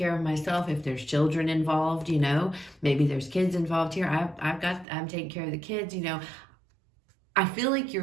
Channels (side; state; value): left; drops out; at 4.9 s